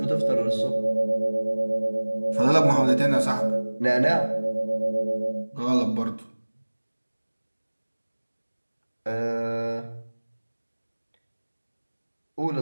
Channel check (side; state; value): both; inverted; correlation -1.00